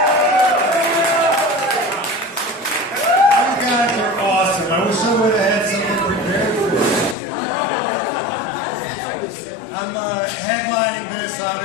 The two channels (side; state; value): right; drops out; at 7.2 s